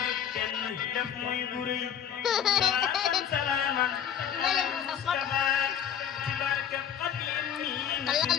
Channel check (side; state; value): right; quieter; 8.9 dB